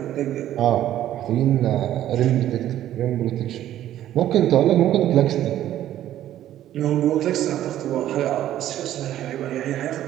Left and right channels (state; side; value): quieter; left; 12.4 dB